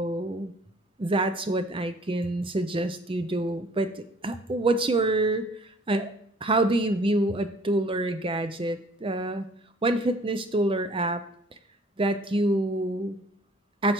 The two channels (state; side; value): normal; both; correlation 0.55